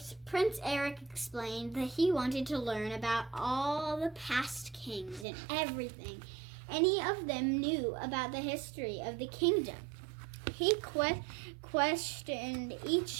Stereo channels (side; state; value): left; drops out; at 5.2 s